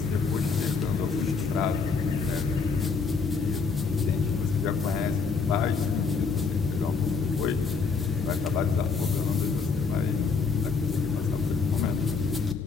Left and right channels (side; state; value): right; quieter; 4.9 dB